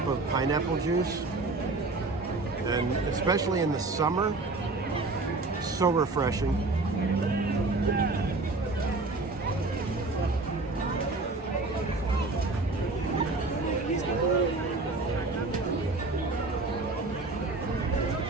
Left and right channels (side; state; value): left; quieter; 3.3 dB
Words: of pineapple juice, and especially in the summer, so refreshing.